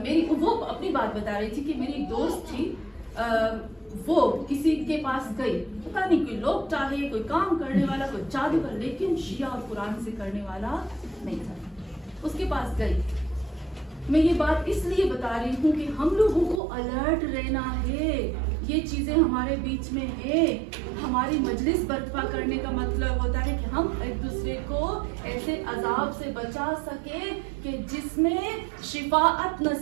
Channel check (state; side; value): drops out; left; at 16.6 s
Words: میری، وہ اپنی بات بتا رہی تھی کہ میری ایک دوست تھی، وہ کسی کے پاس گئی، پتہ نہیں کوئی لوگ چاہے، کوئی کام کرنے والا، کوئی جادوگر، لیکن شیعہ اور قرآن سے کرنے والا نہیں تھا. اس کے پاس گئی. میں یہ بات اس لیے بتا رہی ہوں کہ ہم لوگوں کو الرٹ رہنا ہے. یہ چیزیں ہمارے بیچ میں ہے. ہماری مجلس برپا کرنے کا مطلب ہوتا ہے کہ ہم ایک دوسرے کو ایسے عذاب سے بچا سکے کہ جس میں شفاعت